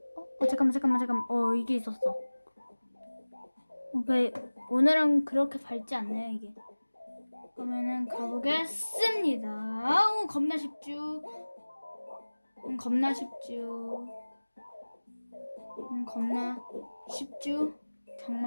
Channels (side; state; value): both; inverted; correlation -1.00